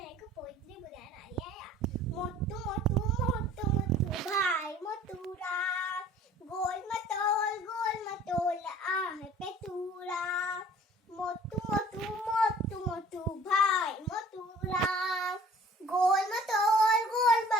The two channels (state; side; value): normal; both; correlation 0.50